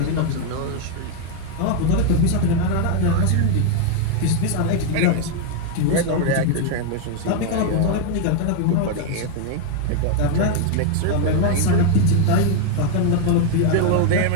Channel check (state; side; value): different; both; correlation 0.01